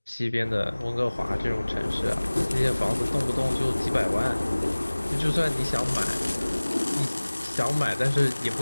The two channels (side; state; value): both; inverted; correlation -1.00